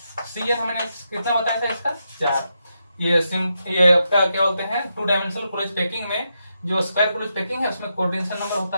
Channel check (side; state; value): both; inverted; correlation -0.84